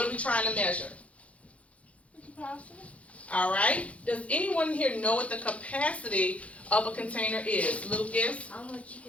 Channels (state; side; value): late; right; 0.064 ms